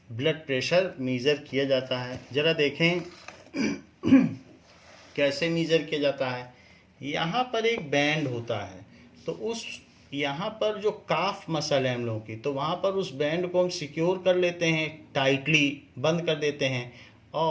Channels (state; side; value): identical; both; correlation 1.00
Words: ब्लड प्रेशर मेज़र किया जाता है। ज़रा देखें कैसे मेज़र किया जाता है। यहाँ पर एक बैंड होता है, तो उस यहाँ पर जो काफ मसल है हम लोगों की, तो वहाँ पर उस बैंड को हम सिक्योर कर लेते हैं, टाइटली बंद कर देते हैं,